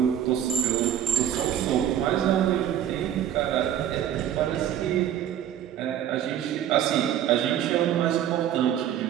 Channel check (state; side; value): quieter; left; 10.6 dB